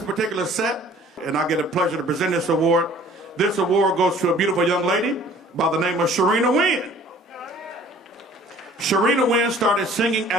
particular set, and I get the pleasure to present this award. This award goes to a beautiful young lady by the name of Sharina Wynn. Sharina Wynn started singing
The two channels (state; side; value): normal; both; correlation 0.51